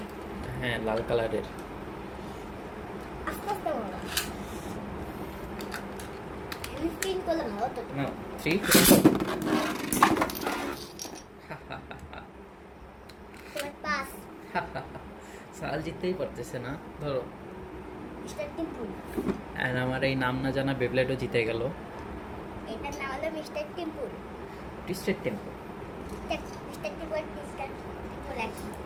হ্যাঁ, লাল কালারের। আস্তে আস্তে বলো। আমি স্পিন করলে ভালো তো। নাও 3 তোমার পাস। সাহাল জিততেই পারতেছে না, ধরো। মিস্টার টিম্পুল। অ্যান্ড আমার এই নাম না জানা বেবলেটও জিতে গেল। এটার নাম হলো মিস্টার টিম্পুল। Twisted tempo. মিস্টার টিম্পুল মিস্টার টিম্পুল একই।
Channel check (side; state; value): both; identical; correlation 1.00